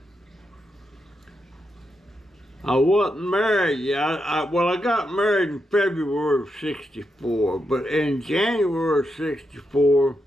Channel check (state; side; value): normal; both; correlation 0.84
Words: I wasn't married yet. I got married in February of 64, but in January of 64,